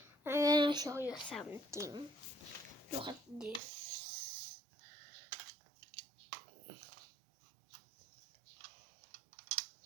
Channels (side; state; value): left; drops out; at 3.6 s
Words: I'm gonna show you something. Look at this.